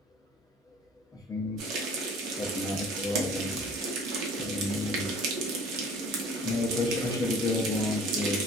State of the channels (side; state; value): both; normal; correlation 0.48